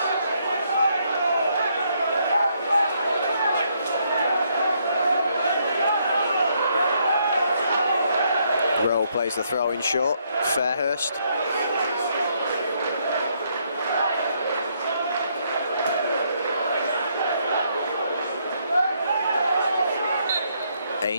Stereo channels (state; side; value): inverted; both; correlation -0.73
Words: Rowe plays the throw in short. Fairhurst.